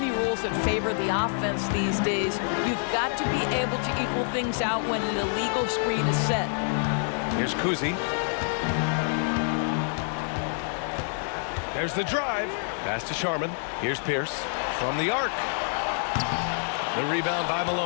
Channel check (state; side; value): silent; right; 60 dB below the other